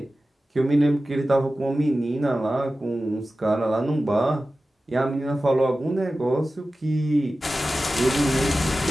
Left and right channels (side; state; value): both; normal; correlation 0.95